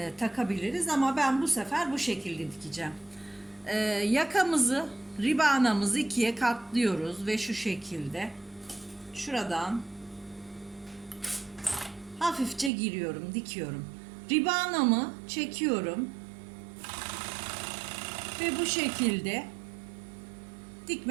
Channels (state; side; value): drops out; left; at 12.7 s